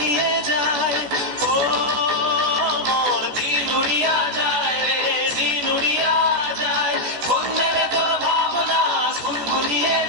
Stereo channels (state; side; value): late; left; 14 ms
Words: যায়। ও মোর দিন উড়িয়া যায় রে, দিন উড়িয়া যায়। অন্যের তোর ভাবনা গুনগুনিয়ে